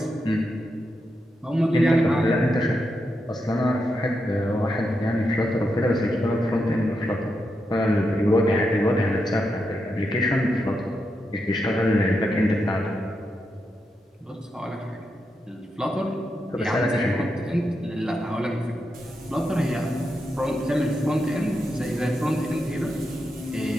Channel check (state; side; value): normal; both; correlation 0.85